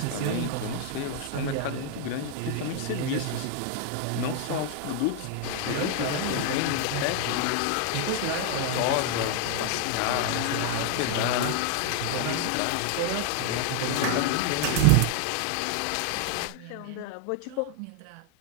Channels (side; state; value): both; different; correlation 0.00